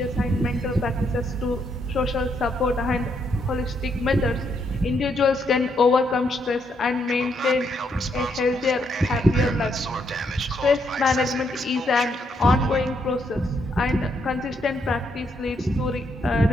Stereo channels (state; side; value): normal; both; correlation 0.76